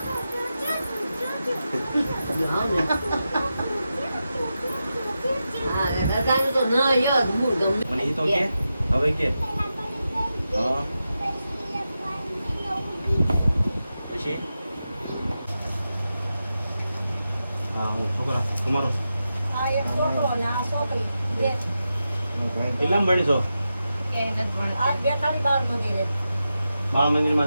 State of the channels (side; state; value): both; inverted; correlation -0.90